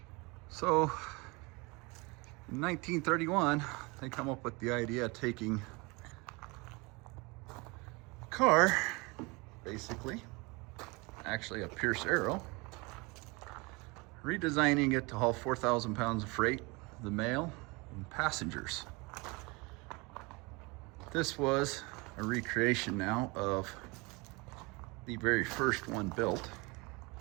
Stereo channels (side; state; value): left; quieter; 26.7 dB